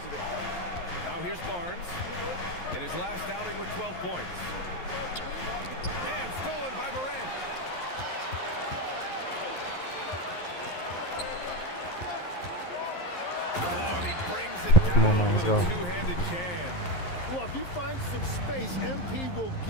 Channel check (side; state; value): right; late; 11 ms